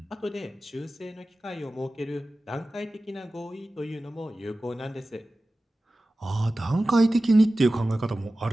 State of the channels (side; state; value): both; normal; correlation 0.96